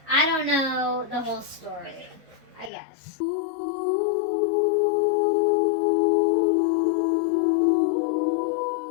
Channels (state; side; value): drops out; right; at 2.7 s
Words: I don't know the whole story, I guess.